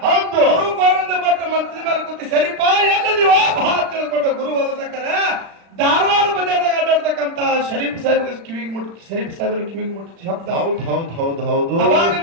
ಹೌದು ಗುರು ಗೋವಿಂದ ಭಟ್ ಮಂತ್ರಿ ಮೇಲೆ ಕೂತಿ ಸರಿಪ ಎಲ್ಲ ನೀವು ಭಾವ ತಿಳ್ಕೊಂಡು ಗುರು ಹೋದ್ರೆ ಧಾರವಾಡ ಬಜಾರ್ದಾಗ ಅಡ್ಡಾಡ್ತಕ್ಕಂತ ಶರೀಫ್ ಸಾಹೇಬ್ಗೆ ಕಿವಿಗೆ ಮುಟ್ಟಿ ಶರೀಫ್ ಸಾಹೇಬ್ರ ಕಿವಿಗೆ ಮುಟ್ಟಿ ಶಬ್ದ ಹೌದು ಅವಾಗ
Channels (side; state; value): left; late; 36 ms